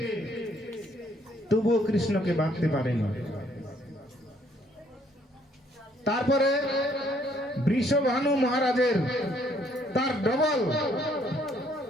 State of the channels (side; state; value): both; normal; correlation 0.66